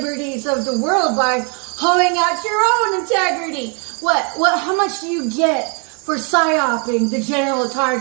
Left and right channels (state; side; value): quieter; left; 37.4 dB